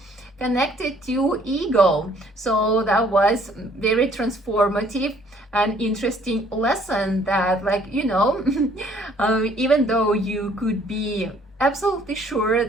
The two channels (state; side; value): normal; both; correlation 0.61